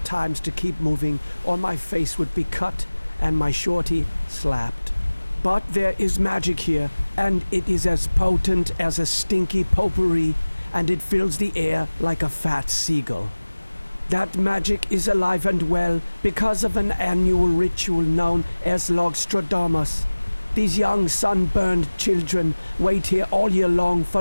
to keep moving or my face would be cut and my shorty slapped. But there is magic here, and it is as potent as a stinky potpourri, and it fills the air like a fat seagull. That magic is alive and well because of an annual ritual known as Logstradamus. These young sunburned children wait here all year long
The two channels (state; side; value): inverted; both; correlation -1.00